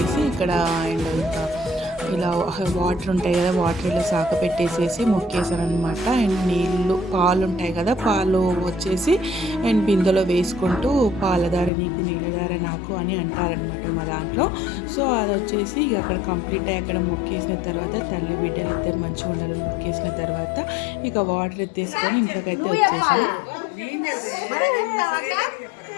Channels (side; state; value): right; drops out; at 11.7 s